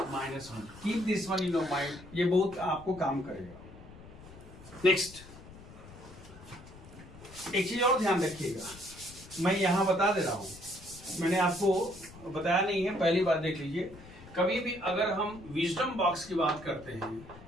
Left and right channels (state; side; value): noise; left; rumble, 18 dB below the sound